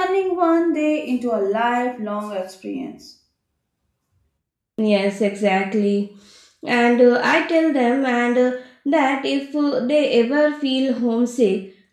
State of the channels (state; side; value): identical; both; correlation 1.00